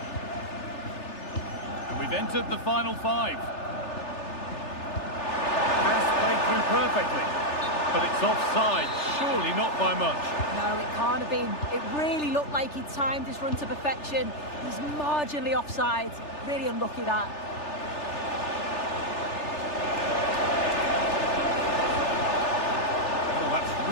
And we've entered the final 5. Pass played through perfectly. But it's offside, surely not by much. No, it can't have been. It really looked like he timed his run to perfection. He's marginally offside. Really unlucky that. Oh, that's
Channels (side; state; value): right; late; 3.4 ms